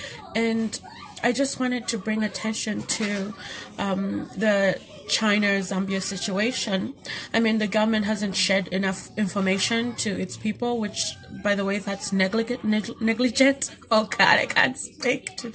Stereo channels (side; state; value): both; identical; correlation 1.00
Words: And I just wanted to bring attention to the China-Zambia situation. I mean, the government hasn't shared enough information to its people, which, by the way, that's negligent. Oh God, I can't speak